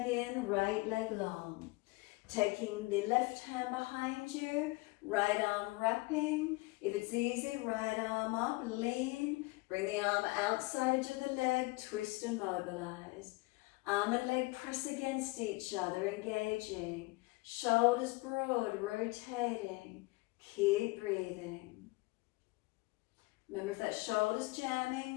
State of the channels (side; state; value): right; quieter; 23.6 dB